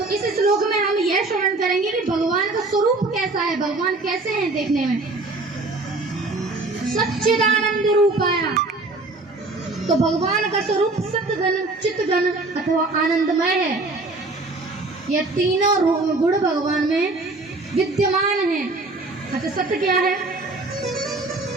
इस श्लोक में हम यह श्रवण करेंगे कि भगवान का स्वरूप कैसा है, भगवान कैसे हैं देखने में। सच्चिदानंद रूपाया, तो भगवान का स्वरूप सत्गन, चित्तगन अथवा आनंदमय है। ये तीनों गुण भगवान में विद्यमान है। अच्छा, सत्य क्या है?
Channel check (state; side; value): quieter; left; 3.2 dB